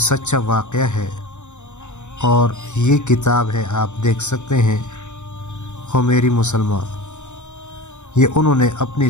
واقعہ ہے۔ اور یہ کتاب ہے، آپ دیکھ سکتے ہیں، خمیری مسلمان۔ یہ انہوں نے اپنی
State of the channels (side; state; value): right; late; 0.84 ms